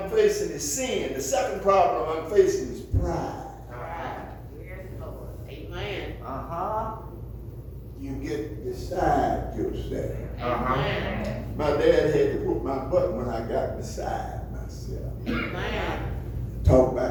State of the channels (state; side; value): identical; both; correlation 1.00